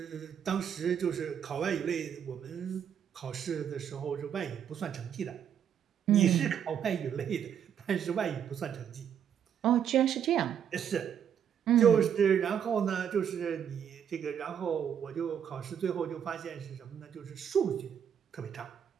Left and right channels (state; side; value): quieter; left; 8.6 dB